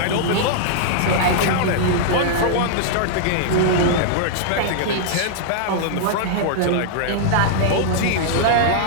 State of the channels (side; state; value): both; different; correlation -0.01